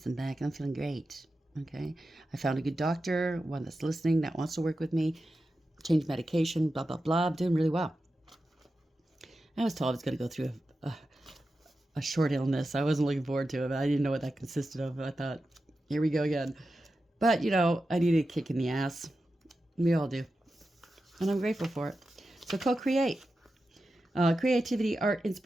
back, and I'm feeling great, okay? I found a good doctor, one that's listening, that wants to work with me, change medication, blah, blah, blah. I'm doing really well. I was told I was going to go through a short illness. I wasn't looking forward to it. I didn't know what that consisted of. I thought, here we go again. But, I needed a kick in the ass. We all do. And I'm grateful for it. So co-create. Creativity, art,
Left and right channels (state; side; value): normal; both; correlation 0.91